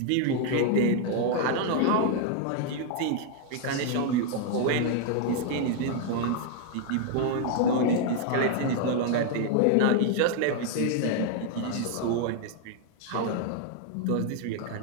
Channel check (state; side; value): different; both; correlation 0.00